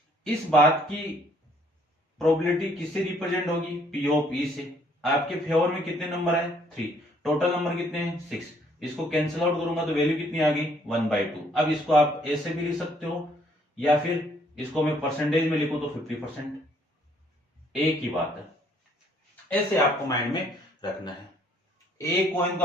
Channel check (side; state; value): both; normal; correlation 0.64